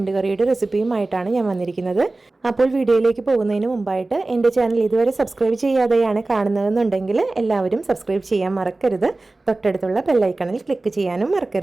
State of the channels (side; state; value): left; quieter; 3.1 dB